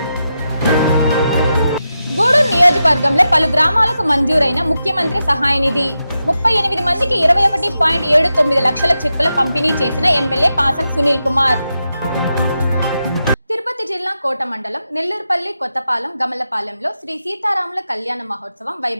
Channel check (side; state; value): both; inverted; correlation -0.88